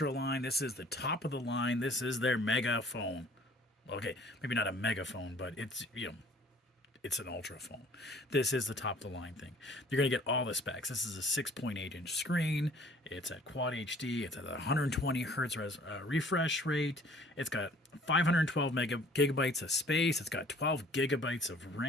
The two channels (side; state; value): both; normal; correlation 0.52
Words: line. This is the top of the line. This is their megaphone. Okay, maybe not a megaphone, but it's an Ultra phone. This is the top of the line thing. You're going to get all the specs. This is a 6.8-inch screen. It's at Quad HD. It's at 120 hertz refresh rate. It's got 512 gigabytes of space. It's got 12 gigabytes of